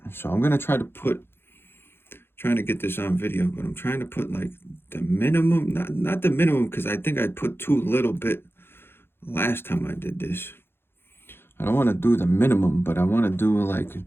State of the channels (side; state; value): right; late; 0.11 ms